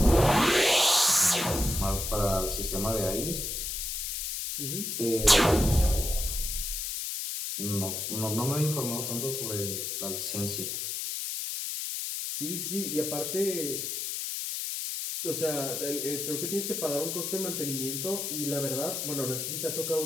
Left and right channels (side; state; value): left; noise; hiss, 3 dB below the sound